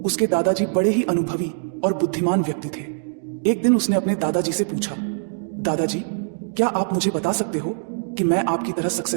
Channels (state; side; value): silent; left; digital silence